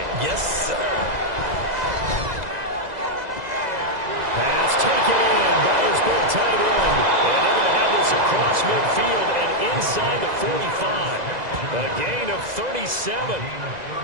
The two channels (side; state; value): left; late; 2.0 ms